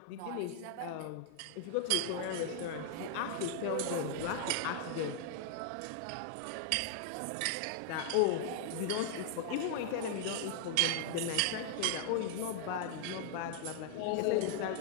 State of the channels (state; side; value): different; both; correlation 0.00